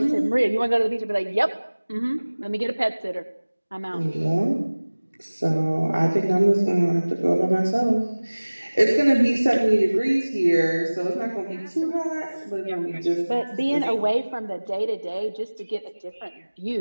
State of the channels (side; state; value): both; inverted; correlation -1.00